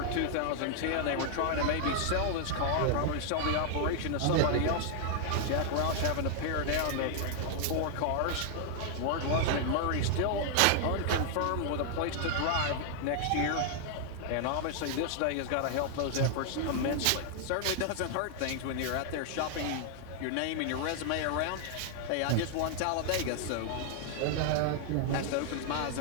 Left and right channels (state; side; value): different; both; correlation 0.00